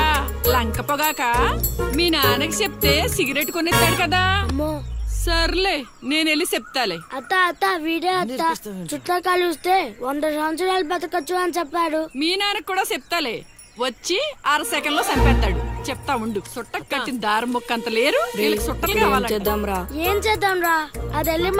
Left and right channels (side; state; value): both; identical; correlation 1.00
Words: లంక పొగాక మీ నాన్నకి చెప్తే సిగరెట్ కొనిస్తాడు కదా. సర్లే నేను వెళ్ళి చెప్తాలే. అత్త వీడే అత్త చుట్టూ కలిస్తే 100 సంవత్సరాలు బతకచ్చు అని చెప్పాడు. మీ నాన్నకి కూడా చెప్తాలే, వచ్చి 6 సెకండ్ లో చంపేస్తాడు. చెప్తా ఉండు. సుట్ట కట్టిన దారం ముక్క అంత లేరు, సుట్టలు కావాలి. ఏం చేద్దాంరా? అది వెళ్ళి